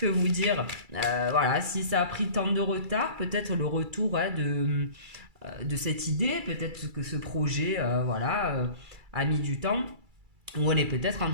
vous dire voilà, si ça a pris tant de retard, peut-être le retour hein, de cette idée, peut-être que ce projet a mis du temps. Ou on est peut-être en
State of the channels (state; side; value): late; left; 2.3 ms